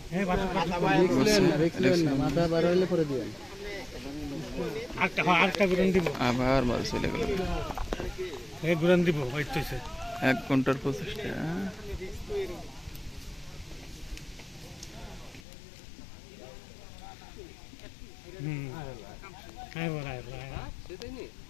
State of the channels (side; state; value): right; drops out; at 15.4 s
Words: আবার মাছ চলে গেল। 1 ঘন্টার প্রচেষ্টা।